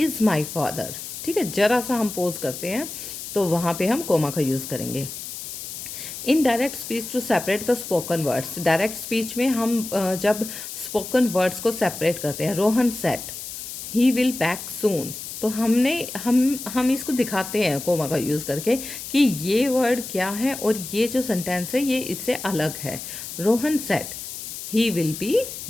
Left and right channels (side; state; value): left; noise; hiss, 9 dB below the sound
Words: my father. ठीक है, जरा सा हम पोज करते हैं तो वहाँ पे हम कोमा का यूज़ करेंगे। In direct speech to separate the spoken words, direct speech में हम जब स्पोकन वर्ड्स को सेपरेट करते हैं, Rohan said he will back soon, तो हम इसको दिखाते हैं कोमा का यूज़ करके कि ये वर्ड क्या है और ये जो सेंटेंस है ये इससे अलग है। Rohan said he will be